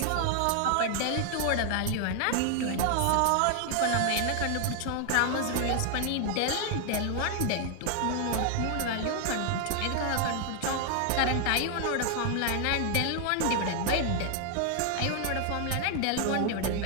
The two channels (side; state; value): both; different; correlation 0.00